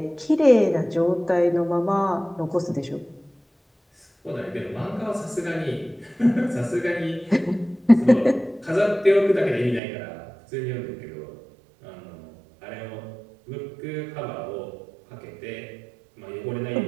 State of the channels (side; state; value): left; drops out; at 9.8 s